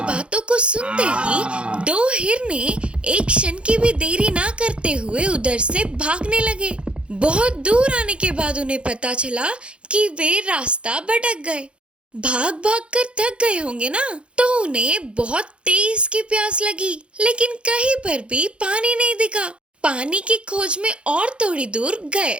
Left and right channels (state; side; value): late; left; 0.058 ms